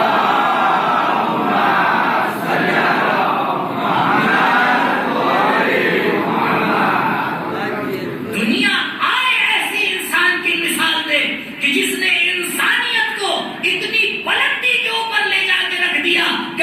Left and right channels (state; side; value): identical; both; correlation 1.00